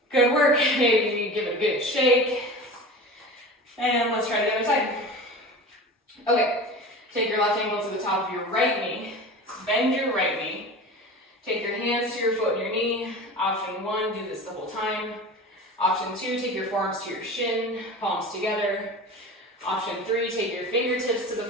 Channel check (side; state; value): both; normal; correlation 0.34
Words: Good work, maybe give it a good shake. And let's try the other side. Okay, take your left ankle to the top of your right knee, bend your right knee, Take your hands to your foot and your knee. Option 1, do this the whole time. Option 2, take your forearms to your shin, palms together. Option 3, take your fingertips to the